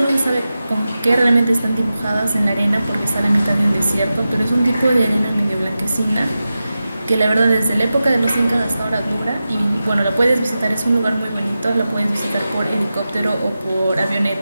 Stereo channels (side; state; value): both; inverted; correlation -0.93